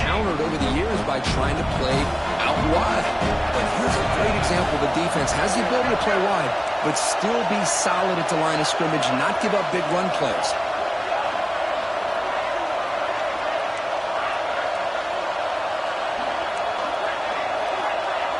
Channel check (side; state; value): both; identical; correlation 1.00